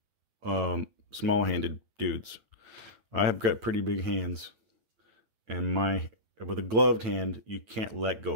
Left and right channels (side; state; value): left; late; 9.0 ms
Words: small-handed dudes. I have got pretty big hands, and with a gloved hand, you can't let